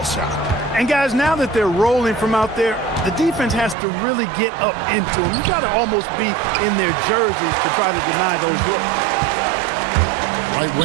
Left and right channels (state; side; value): drops out; left; at 3.8 s